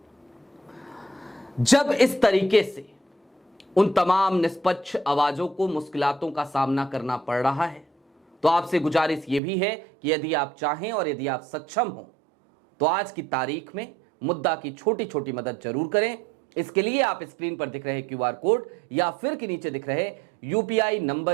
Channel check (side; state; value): left; drops out; at 9.4 s